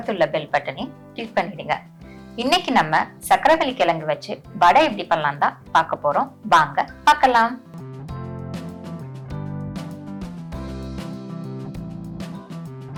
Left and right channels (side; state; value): both; identical; correlation 1.00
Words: பெல் பட்டனையும் கிளிக் பண்ணிடுங்க. இன்னைக்கு நம்ம சக்கரவள்ளி கிழங்கு வச்சு வடை எப்படி பண்ணலாம் தான் பார்க்க போறோம். வாங்க பார்க்கலாம்.